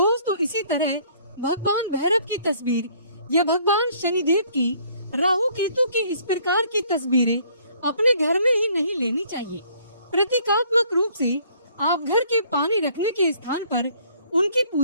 इसी तरह भगवान भैरव की तस्वीर या भगवान शनिदेव की, राहु केतु की इस प्रकार की तस्वीरें अपने घर में ही नहीं लेनी चाहिए। प्रतीकात्मक रूप से आप घर के पानी रखने के स्थान पर उनकी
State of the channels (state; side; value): inverted; both; correlation -0.60